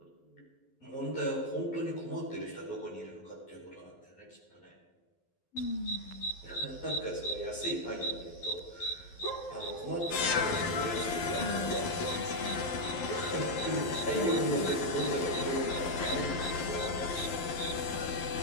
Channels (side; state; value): right; late; 12 ms